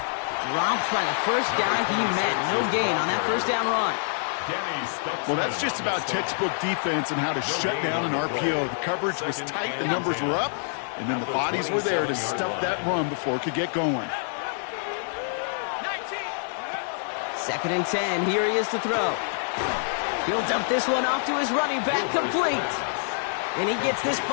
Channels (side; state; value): right; silent; 58 dB below the other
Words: Dropped by the first guy he met. No gain on that 1st down run. Well, that's just about textbook defense and how to shut down an RPO. The coverage was tight, the numbers were up, and then the bodies were there to stuff that run before it could get going. 2nd and 10. Here he is to throw. He'll dump this one off to his running back, complete. And he gets this